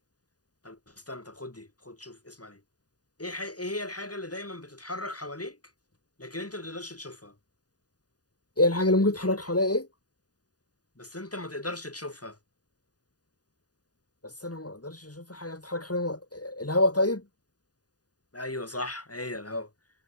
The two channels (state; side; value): late; right; 0.68 ms